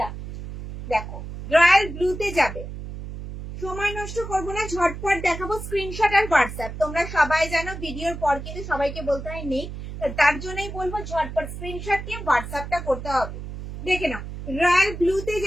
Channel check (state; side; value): noise; right; hum, 9 dB below the sound